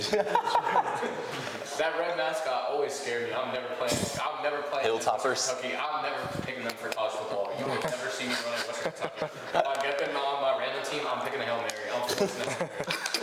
That red mascot always scared me. I'm never playing Hilltoppers. Kentucky. I'm never picking them for college football. You will never see me running Western Kentucky. If I get them on my random team, I'm picking a Hail Mary. I'm forcing them.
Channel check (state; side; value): identical; both; correlation 1.00